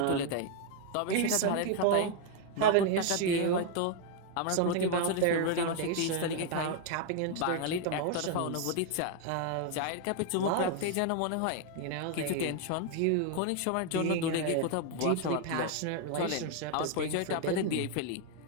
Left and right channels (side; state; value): both; different; correlation 0.01